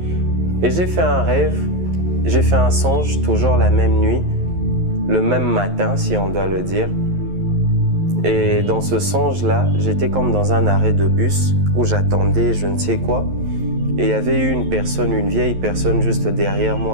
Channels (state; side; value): late; left; 11 ms